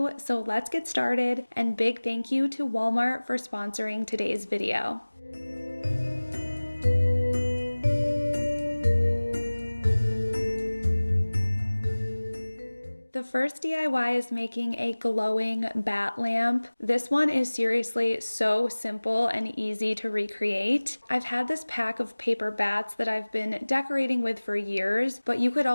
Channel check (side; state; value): both; inverted; correlation -1.00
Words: so let's get started, and big thank you to Walmart for sponsoring today's video. The first DIY is making a glowing bat lamp. This one is seriously so simple and easy to recreate. I've had this pack of paper bats that I've been decorating with for years, but you could